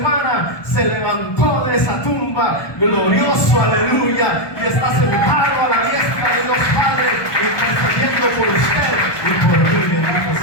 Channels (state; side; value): late; right; 1.2 ms